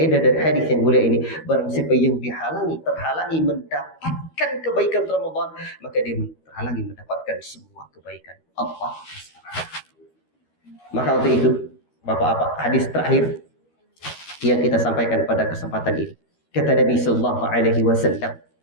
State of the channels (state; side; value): late; right; 13 ms